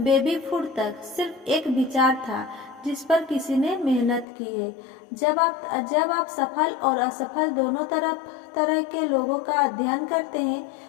फूड तक सिर्फ एक विचार था जिस पर किसी ने मेहनत की है। जब आप सफल और असफल दोनों तरह के लोगों का अध्ययन करते हैं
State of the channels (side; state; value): right; drops out; at 4.2 s